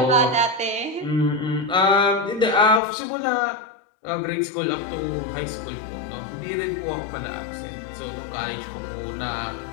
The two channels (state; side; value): drops out; right; at 2.8 s